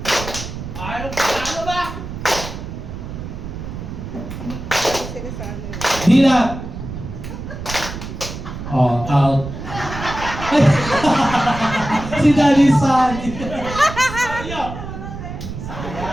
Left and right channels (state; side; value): noise; right; rumble, 9 dB below the sound